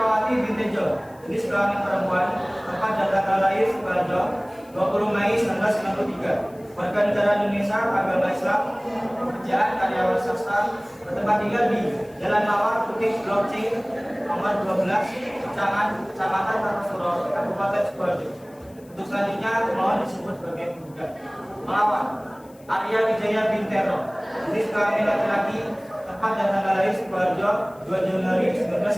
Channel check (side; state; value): left; noise; hiss, 29 dB below the sound